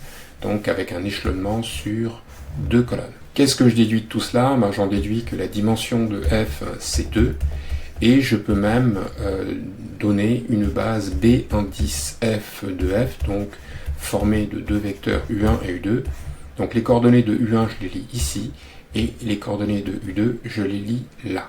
donc avec un échelonnement sur deux colonnes. Qu'est-ce que je déduis de tout cela? J'en déduis que la dimension de f, c'est 2, et je peux même donner une base B indice f de f, donc formée de deux vecteurs U1 et U2. Donc les coordonnées de U1, je les lis ici, et les coordonnées de U2, je les lis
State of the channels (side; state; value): both; identical; correlation 1.00